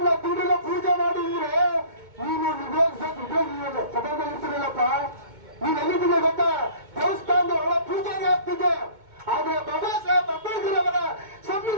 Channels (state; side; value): late; left; 2.2 ms